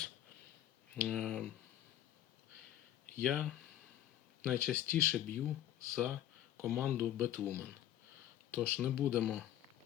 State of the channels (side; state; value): right; quieter; 12.1 dB